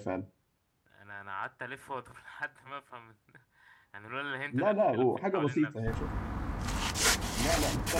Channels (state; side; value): identical; both; correlation 1.00